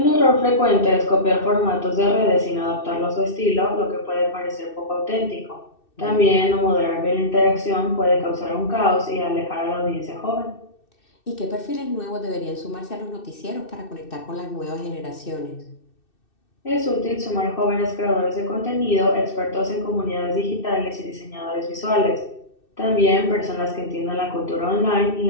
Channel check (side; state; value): right; late; 2.6 ms